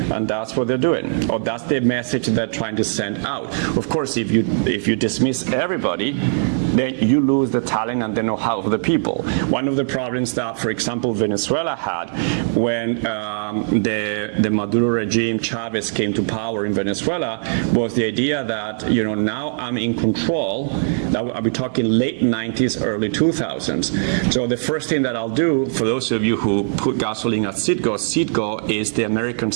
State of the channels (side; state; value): left; silent; digital silence